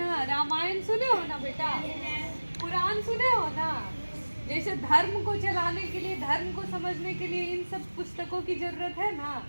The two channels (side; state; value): both; inverted; correlation -1.00